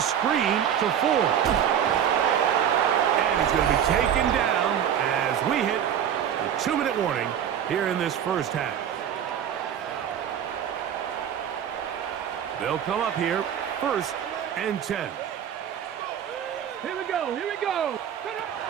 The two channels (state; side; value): quieter; left; 9.3 dB